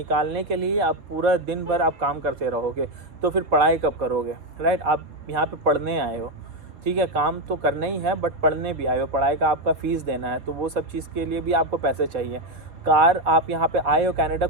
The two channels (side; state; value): left; late; 4.4 ms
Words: के लिए आप पूरा दिन भर आप काम करते रहोगे, तो फिर पढ़ाई कब करोगे, राइट। आप यहाँ पे पढ़ने आए हो, ठीक है, काम तो करना ही है बट पढ़ने भी आए हो, पढ़ाई का आपका फ़ीस देना है, तो वो सब चीज़ के लिए भी आपको पैसे चाहिए। कार आप यहाँ पे आए हो कनाडा,